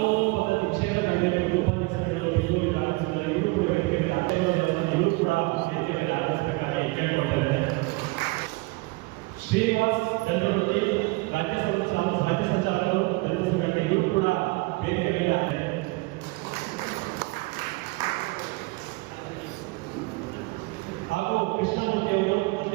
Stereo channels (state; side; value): quieter; left; 24.2 dB